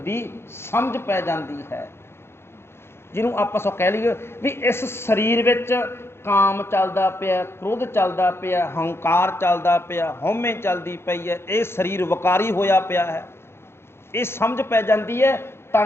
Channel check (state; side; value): late; right; 0.12 ms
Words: ਸਮਝ ਪੈ ਜਾਂਦੀ ਹੈ। ਜਿਹਨੂੰ ਆਪਾਂ ਸੋ ਕਹਿ ਲਈਏ ਵੀ ਇਸ ਸਰੀਰ ਵਿੱਚ ਕਾਮ ਚੱਲਦਾ ਪਿਆ, ਕ੍ਰੋਧ ਚੱਲਦਾ ਪਿਆ, ਹੰਕਾਰ ਚੱਲਦਾ ਪਿਆ, ਹਉਮੈ ਚੱਲਦੀ ਪਈ ਹੈ, ਇਹ ਸਰੀਰ ਵਿਕਾਰੀ ਹੋਇਆ ਪਿਆ ਹੈ, ਇਹ ਸਮਝ ਪੈ ਜਾਂਦੀ ਹੈ।